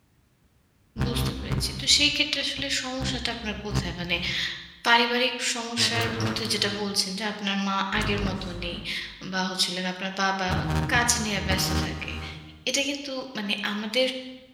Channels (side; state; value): both; identical; correlation 1.00